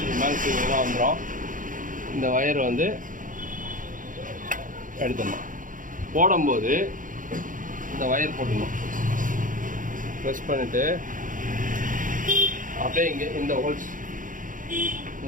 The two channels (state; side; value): late; left; 0.39 ms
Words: மேலே சீக்கிரம் வந்துடும். இந்த வயர் வந்து எடுத்துடணும். போடும்போது இந்த வயர் போட்டுடணும். ப்ரெஸ் பண்ணிவிட்டு அப்படியே இங்கே இந்த ஹோல்ஸ்